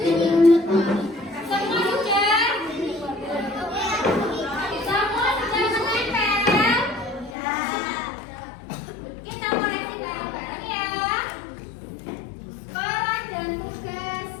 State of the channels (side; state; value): right; drops out; at 7.4 s